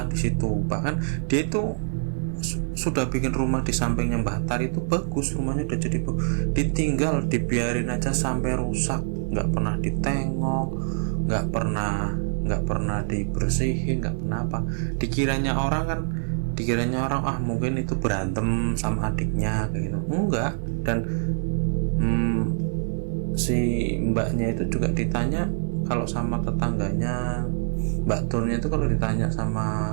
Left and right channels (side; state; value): left; silent; digital silence